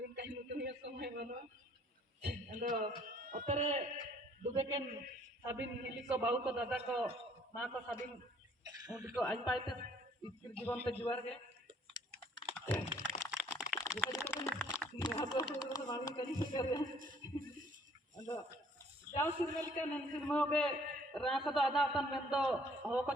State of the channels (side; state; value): both; normal; correlation 0.59